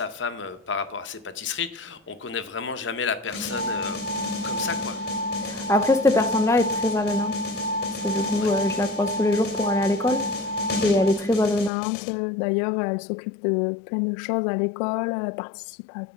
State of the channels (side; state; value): right; drops out; at 11.7 s